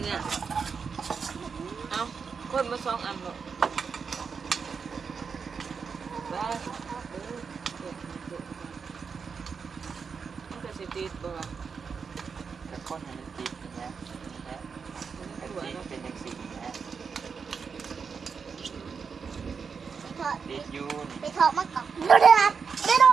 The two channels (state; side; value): quieter; left; 5.8 dB